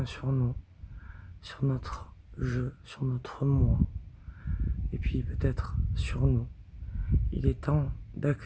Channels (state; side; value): identical; both; correlation 1.00